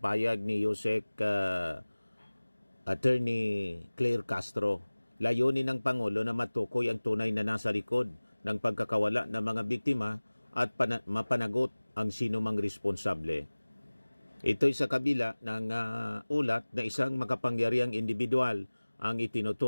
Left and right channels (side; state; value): both; inverted; correlation -1.00